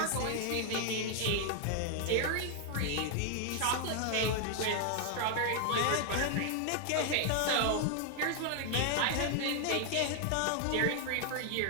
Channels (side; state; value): both; different; correlation 0.00